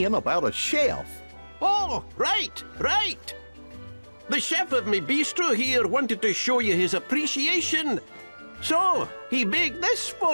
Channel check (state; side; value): inverted; both; correlation -1.00